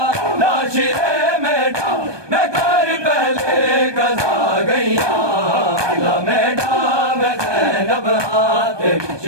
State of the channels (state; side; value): late; left; 1.2 ms